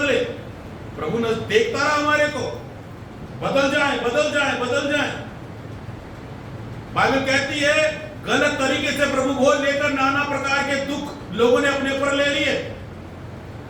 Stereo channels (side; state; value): both; identical; correlation 1.00